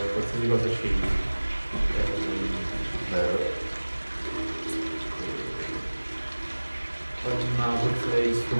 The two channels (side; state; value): both; inverted; correlation -1.00